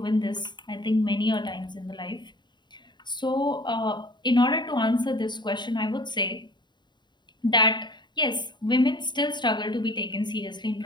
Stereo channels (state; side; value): late; right; 0.22 ms